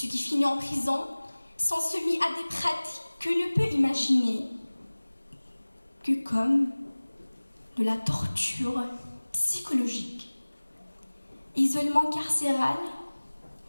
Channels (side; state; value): both; inverted; correlation -1.00